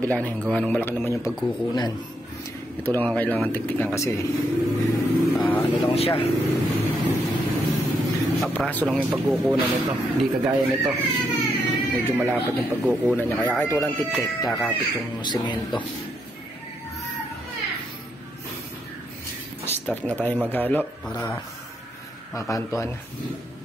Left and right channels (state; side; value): normal; both; correlation 0.78